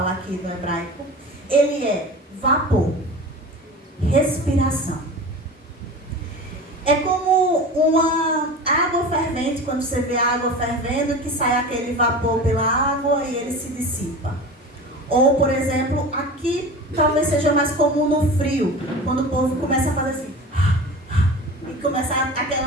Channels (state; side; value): normal; both; correlation 0.34